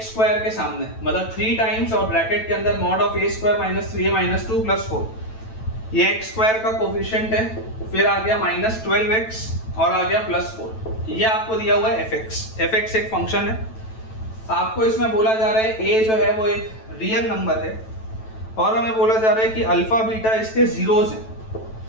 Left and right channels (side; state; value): right; late; 9.1 ms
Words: स्क्वायर के सामने, मतलब 3 टाइम्स और ब्रैकेट के अंदर mod of a square minus 3a minus 2 plus 4। ये x स्क्वायर का कोफिशिएंट है, फिर आ गया माइनस 12x और आ गया प्लस 4। ये आपको दिया हुआ है fx एक फंक्शन है। आपको इसमें बोला जा रहा है a जो है वो एक रियल नंबर है, और हमें बोला जा रहा है कि अल्फा बीटा इसके जीरोज हैं,